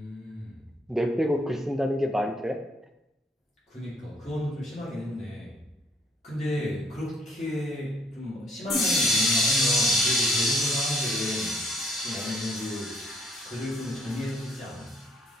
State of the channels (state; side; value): normal; both; correlation 0.64